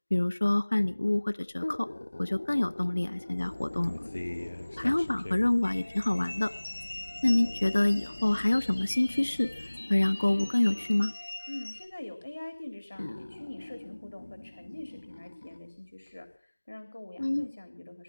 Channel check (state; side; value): inverted; both; correlation -1.00